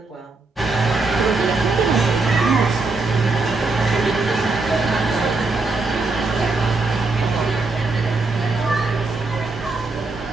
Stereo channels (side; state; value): left; quieter; 3.6 dB